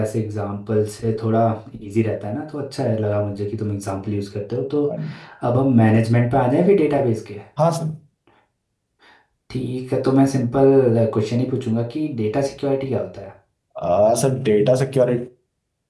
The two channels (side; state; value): both; identical; correlation 1.00